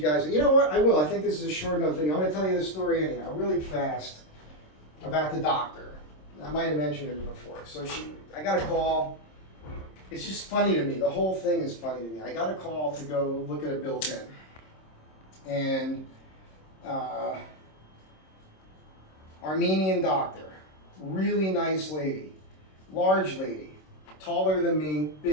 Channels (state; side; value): late; right; 26 ms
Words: guys. You know what? I will. I think this is a short enough video. I'm going to tell you this story anyhow, really fast, about the doctor. I might have mentioned it before. So I got a call. It's just funny to me. The whole thing is funny to me. I got a call to go look at a built-in. And Armenian Doctor, really nice lady, large lady, taller than me,